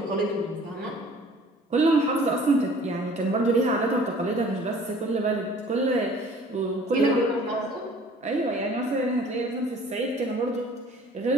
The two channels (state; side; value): normal; both; correlation 0.51